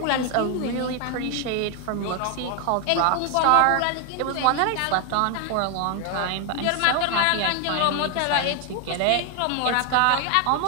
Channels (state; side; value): different; both; correlation 0.01